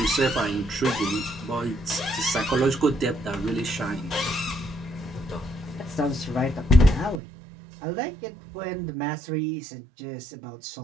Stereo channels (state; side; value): drops out; left; at 7.2 s